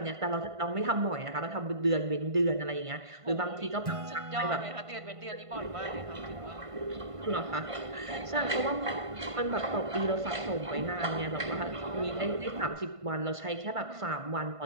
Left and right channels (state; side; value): late; left; 1.5 ms